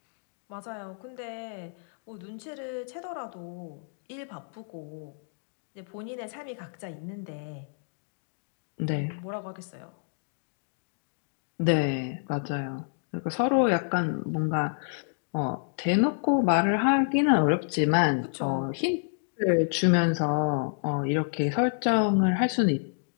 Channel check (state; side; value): silent; right; digital silence